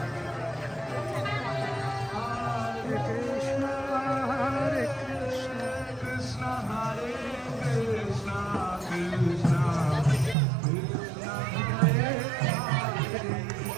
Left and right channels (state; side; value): drops out; left; at 10.4 s